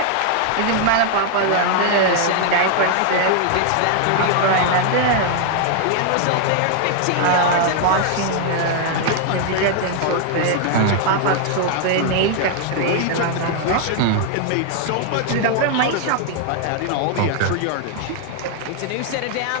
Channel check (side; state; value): both; different; correlation 0.00